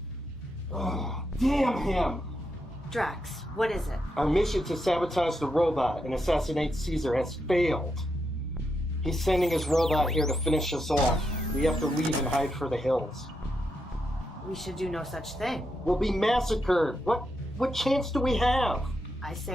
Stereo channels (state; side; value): normal; both; correlation 0.83